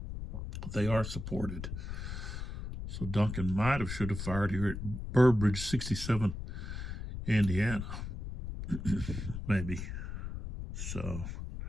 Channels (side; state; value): left; noise; rumble, 6 dB below the sound